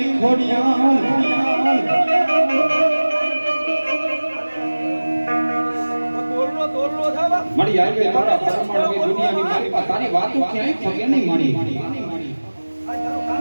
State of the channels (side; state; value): both; inverted; correlation -1.00